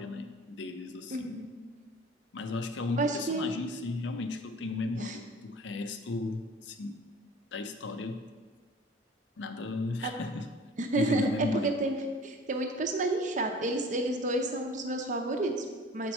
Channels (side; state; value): both; normal; correlation 0.45